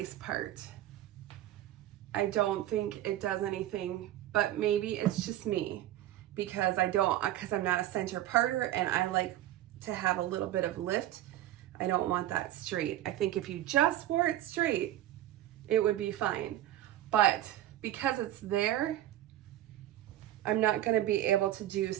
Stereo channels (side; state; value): left; quieter; 13.4 dB